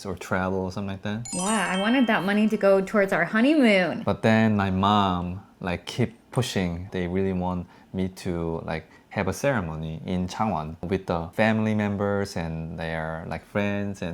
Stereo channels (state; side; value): identical; both; correlation 1.00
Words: or travel or something like that. Yeah, I wanted that money to go towards our honeymoon. But then my mom like keep pushing. They really want me to like have a ceremony in Changwon with the family members and their like friends